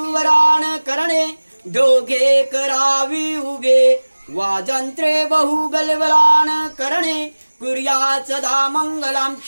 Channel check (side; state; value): both; inverted; correlation -1.00